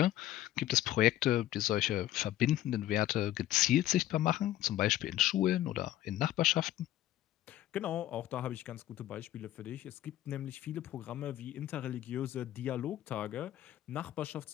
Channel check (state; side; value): quieter; right; 13.7 dB